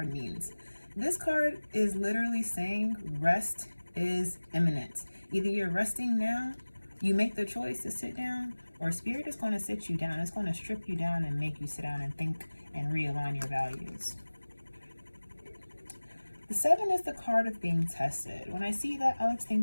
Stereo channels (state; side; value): inverted; both; correlation -1.00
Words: means. This card is literally saying rest is imminent. Either you're resting now, you make the choice to sit down, or Spirit is going to sit you down. It's going to strip you down and make you sit down and think and realign your values. The 7 is the card of being tested. When I see that, I always